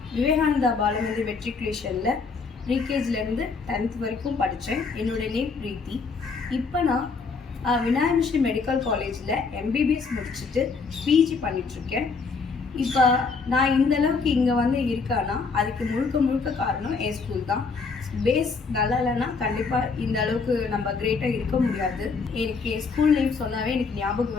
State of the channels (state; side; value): quieter; right; 4.7 dB